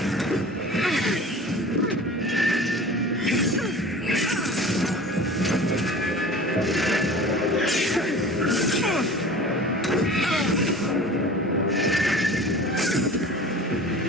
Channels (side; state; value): both; normal; correlation 0.40